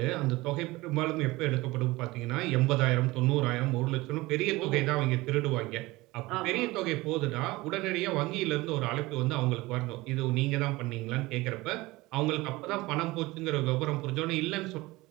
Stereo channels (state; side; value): quieter; left; 20.6 dB